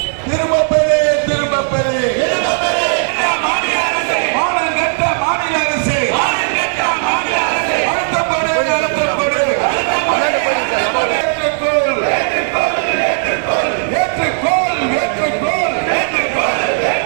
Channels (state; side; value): silent; left; digital silence